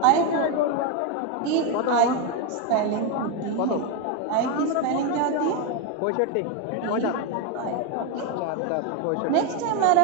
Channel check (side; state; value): both; different; correlation 0.02